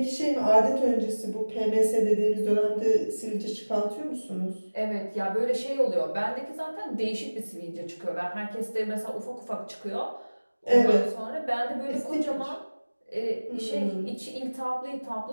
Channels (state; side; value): inverted; both; correlation -1.00